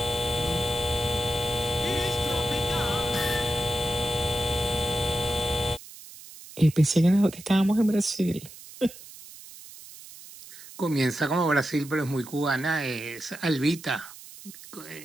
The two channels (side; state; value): right; noise; hiss, 17 dB below the sound